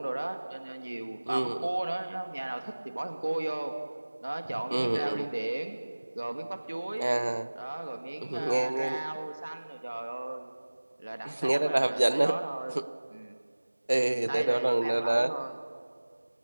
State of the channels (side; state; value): both; inverted; correlation -1.00